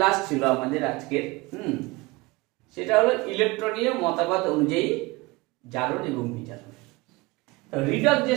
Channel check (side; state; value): left; quieter; 23.1 dB